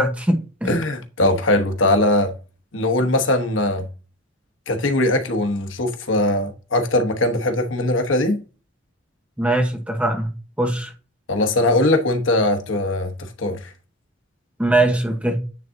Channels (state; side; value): normal; both; correlation 0.22